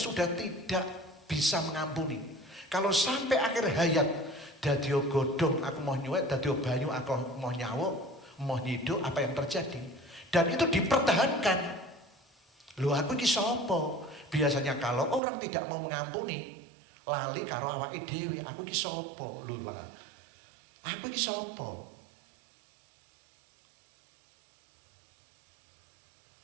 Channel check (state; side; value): drops out; left; at 15.2 s